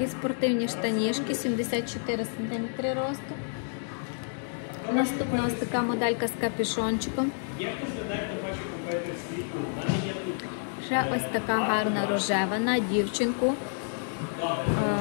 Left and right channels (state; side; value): silent; right; 59 dB below the other